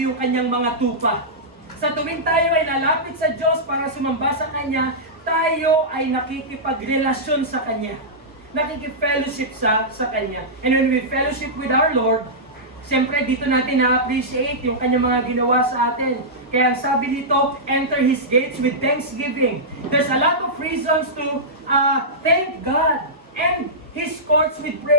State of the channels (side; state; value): both; normal; correlation -0.13